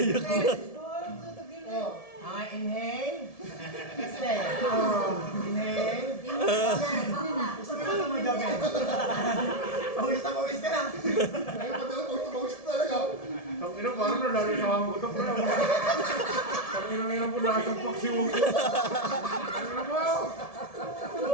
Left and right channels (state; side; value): late; right; 1.7 ms